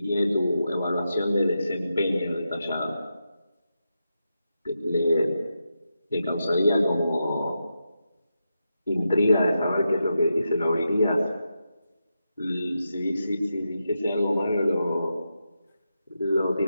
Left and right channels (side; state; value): both; inverted; correlation -0.87